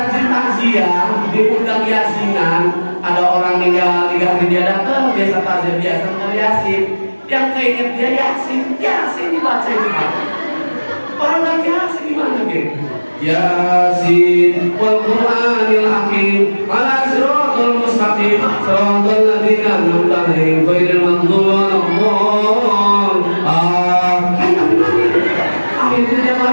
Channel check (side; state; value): both; inverted; correlation -1.00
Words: takziah, diundang yasinan, ada orang meninggal 3 hari dia datang, biasa takziah, biasa dengar yasin, yang keinget dia yasin dibaca itu. Orang lagi yasin gimana gitu? Yasin wal Qur'anil hakim ala siratal mustaqim siratal ladzina an'amta 'alaihim ghairil maghdubi 'alaihim. Akhirnya dia